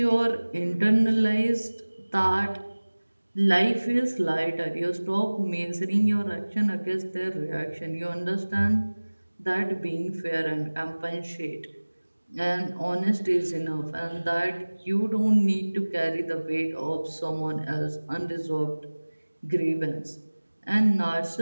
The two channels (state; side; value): inverted; both; correlation -1.00